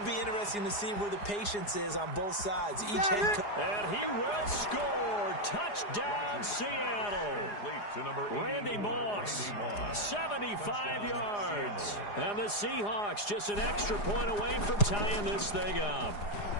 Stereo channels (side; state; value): right; late; 4.9 ms